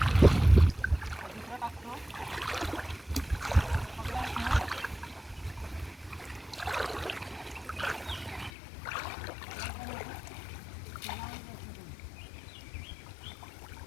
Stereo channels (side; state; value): right; drops out; at 8.5 s